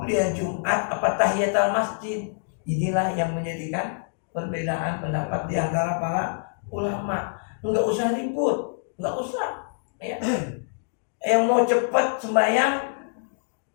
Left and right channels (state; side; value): silent; right; digital silence